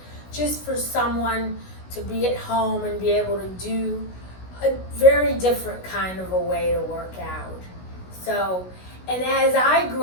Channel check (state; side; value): late; right; 16 ms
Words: just for someone to be at home and be able to do a very different kind of a way to work out. So, and as I